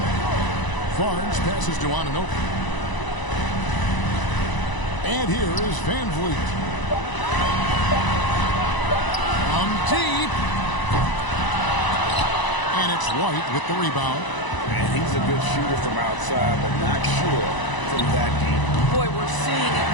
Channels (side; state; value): right; late; 1.0 ms